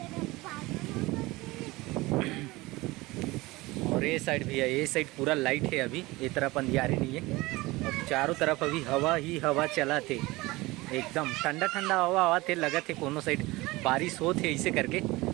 और ये साइड भी है, ये साइड पूरा लाइट है अभी, ये तरफ अंधियारी नहीं है। और चारों तरफ अभी हवा ही हवा चला थे एकदम ठंडा ठंडा हवा हवा थे। लगा थे कोनो साइड बारिश हो थे ऐसे करके। ये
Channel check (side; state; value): left; quieter; 21.0 dB